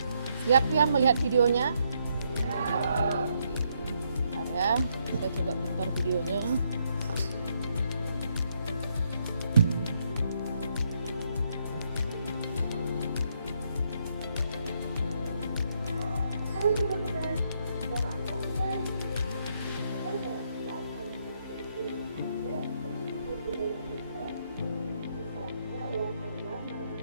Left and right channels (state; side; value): inverted; both; correlation -0.76